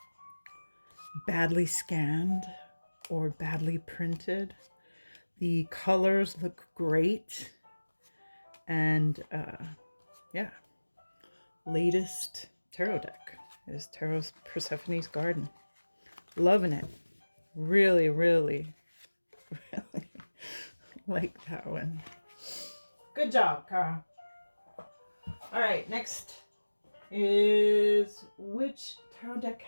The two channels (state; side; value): inverted; both; correlation -1.00